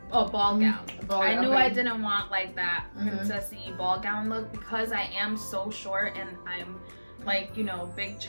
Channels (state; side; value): inverted; both; correlation -1.00